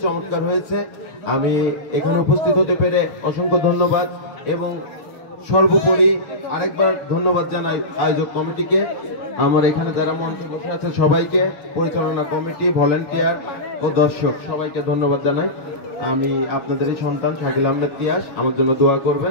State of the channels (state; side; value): late; right; 6.8 ms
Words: চমৎকার হয়েছে। আমি এখানে উপস্থিত হতে পেরে অসংখ্য ধন্যবাদ এবং সর্বোপরি আরেকবার ধন্যবাদ জানাই আয়োজক কমিটিকে, আমার এখানে যারা মঞ্চে বসে আছে সবাইকে, পরিচালনা কমিটি, ভলেন্টিয়ার ও দর্শক সবাইকে ধন্যবাদ জানাই। আমি আপনাদেরই সন্তান শাকিল আহমেদ তিয়াস, আমার জন্য দোয়া করবেন।